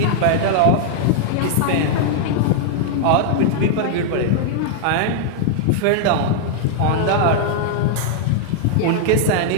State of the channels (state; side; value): different; both; correlation -0.01